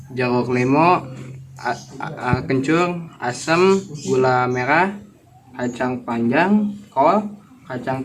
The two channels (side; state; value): both; identical; correlation 1.00